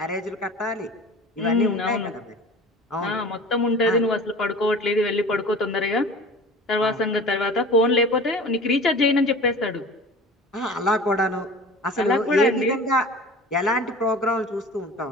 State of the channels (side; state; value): both; normal; correlation 0.40